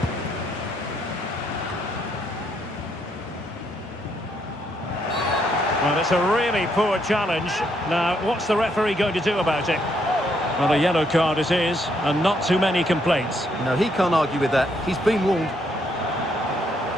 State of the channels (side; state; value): both; normal; correlation 0.73